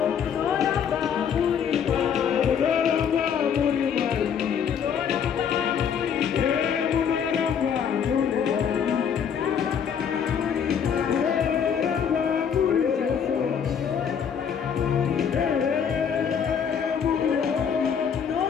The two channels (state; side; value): quieter; right; 7.6 dB